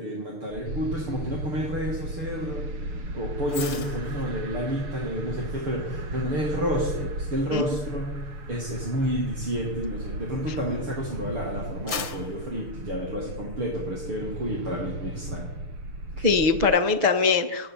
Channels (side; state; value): left; late; 6.7 ms